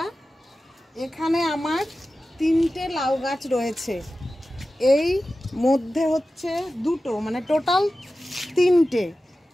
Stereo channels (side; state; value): both; normal; correlation 0.94